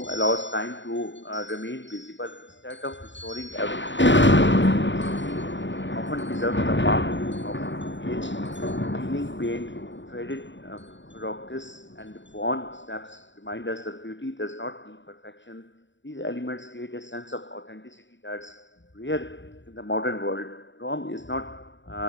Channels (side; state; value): right; late; 0.54 ms